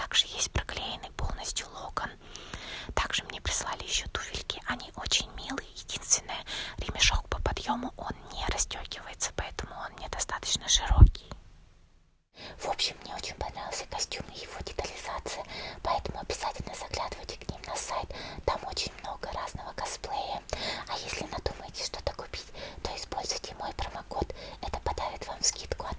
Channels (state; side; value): identical; both; correlation 1.00